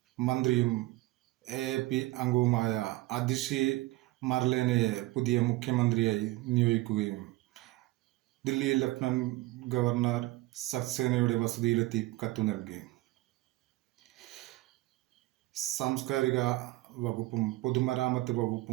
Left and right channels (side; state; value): left; quieter; 19.2 dB